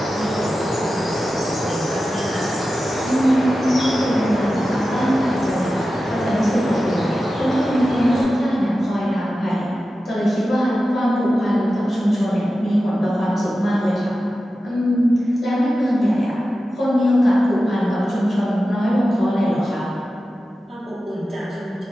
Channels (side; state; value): both; normal; correlation 0.93